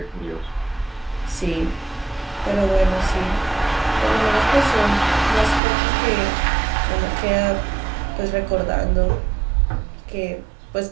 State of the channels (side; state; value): left; drops out; at 5.6 s